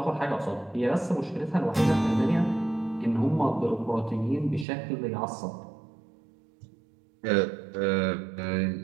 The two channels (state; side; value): drops out; left; at 4.7 s